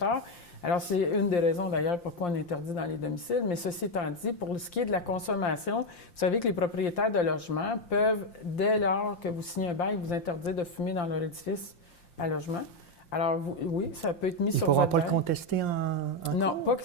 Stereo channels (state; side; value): late; right; 5.7 ms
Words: Alors, c'est une des raisons, d'ailleurs, pourquoi on interdit dans les domiciles. Mais ceci étant dit, pour ce qui est de la consommation, vous savez que les propriétaires de logements peuvent, dès lors que vous signez un bail, vous interdire de fumer dans leur édifice à logement. Alors, oui, ça peut être mis sur votre bail. Ils ne pourront pas le contester en Non, pas